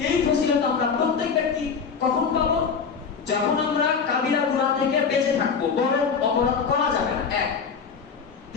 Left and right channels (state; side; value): quieter; right; 5.9 dB